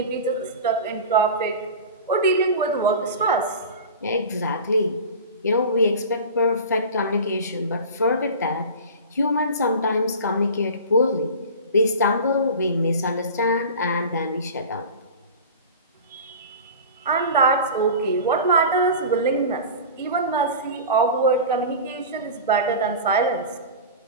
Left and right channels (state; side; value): inverted; both; correlation -0.33